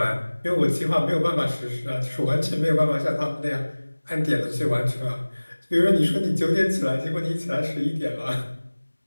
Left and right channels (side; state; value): both; inverted; correlation -1.00